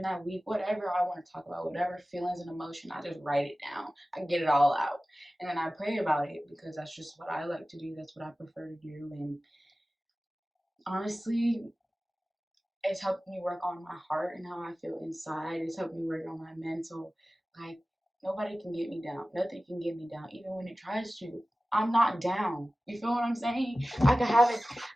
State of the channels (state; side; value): normal; both; correlation 0.96